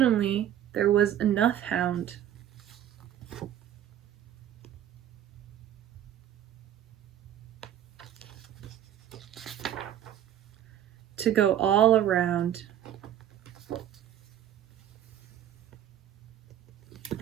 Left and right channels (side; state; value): left; quieter; 10.9 dB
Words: there was enough hound to go all around.